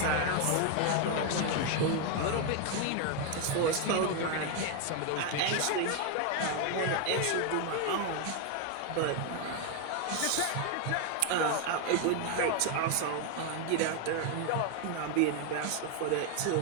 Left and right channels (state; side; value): different; both; correlation 0.01